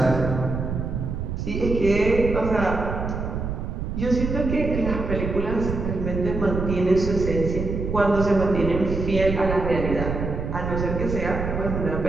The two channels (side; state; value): right; noise; rumble, 4 dB below the sound